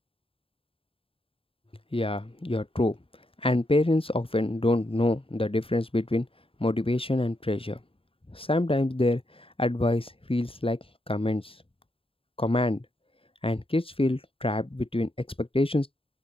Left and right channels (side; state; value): right; late; 0.27 ms